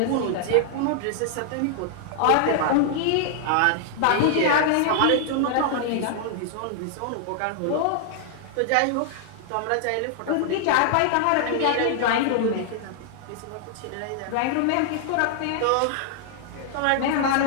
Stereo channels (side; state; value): both; different; correlation -0.01